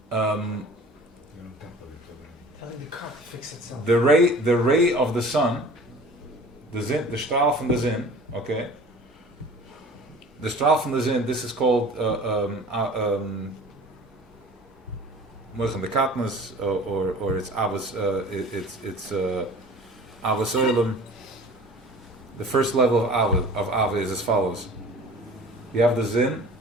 Telling the car to fix itself. the ray of the sun, the strahl from the zin, okay? The strahl from the zin, this is called Moichem de Katnas, or it's Avos, it's Avos Oilem. The first level of Ava is as follows. You have the Zin,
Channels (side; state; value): both; normal; correlation 0.44